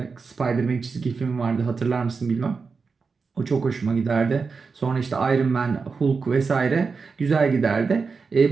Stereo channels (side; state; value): left; quieter; 4.9 dB